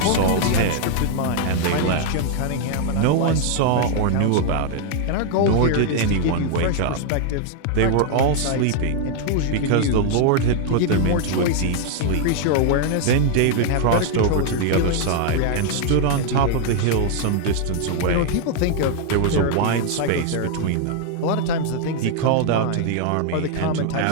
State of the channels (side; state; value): both; different; correlation 0.00